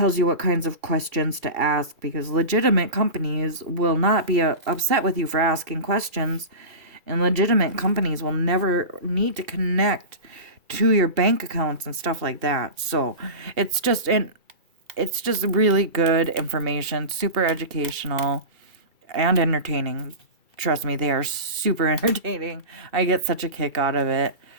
you what kinds of questions to ask, because legitimate companies will not be upset with you for asking questions, and legitimate companies will never need to connect to your bank accounts and stuff like that. So it's just really good information, super educational and entertaining. Trust me, they are super entertaining. I get such a kick out of it.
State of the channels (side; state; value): left; late; 2.3 ms